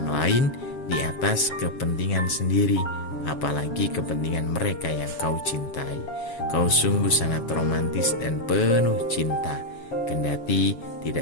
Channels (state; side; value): late; right; 7.2 ms